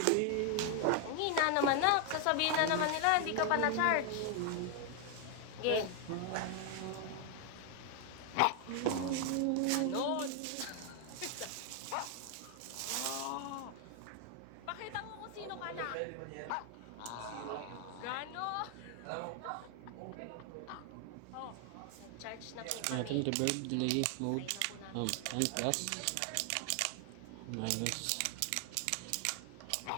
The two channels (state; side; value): different; both; correlation 0.00